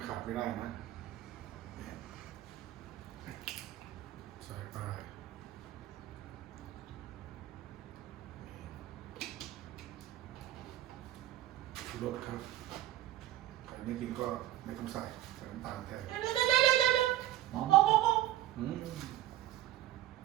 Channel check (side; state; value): left; quieter; 14.2 dB